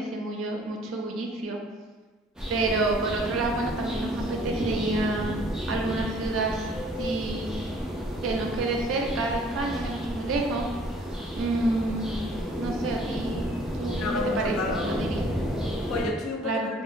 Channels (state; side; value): normal; both; correlation 0.56